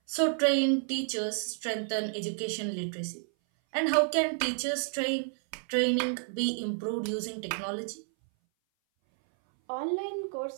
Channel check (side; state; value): left; silent; 57 dB below the other